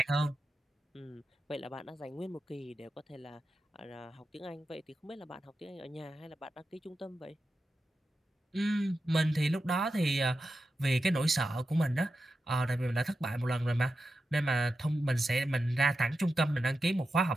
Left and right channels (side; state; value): both; normal; correlation 0.91